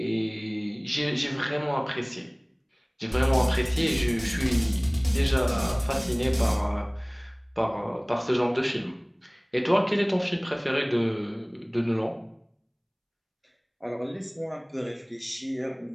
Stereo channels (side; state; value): both; identical; correlation 1.00